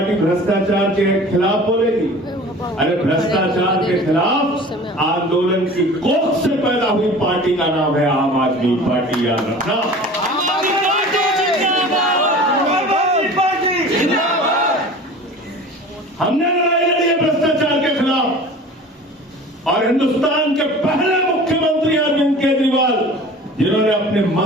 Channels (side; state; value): both; normal; correlation 0.41